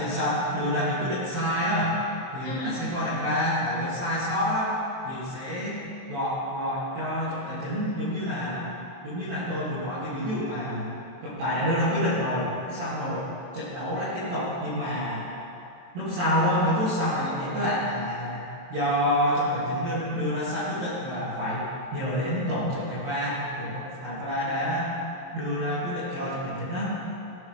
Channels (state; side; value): late; left; 23 ms